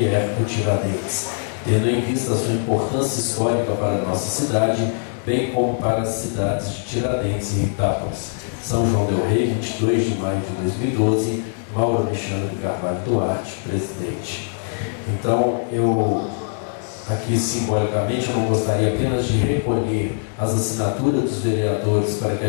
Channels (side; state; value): right; silent; digital silence